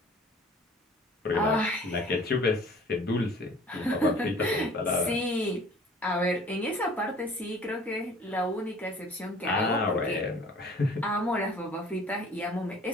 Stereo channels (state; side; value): normal; both; correlation 0.50